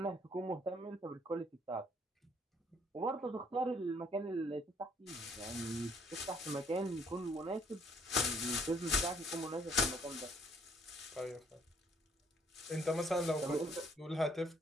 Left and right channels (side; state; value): both; normal; correlation 0.64